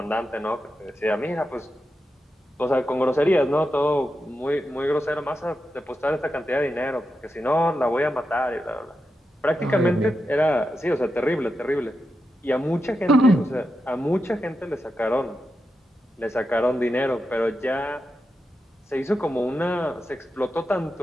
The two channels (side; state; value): both; normal; correlation 0.88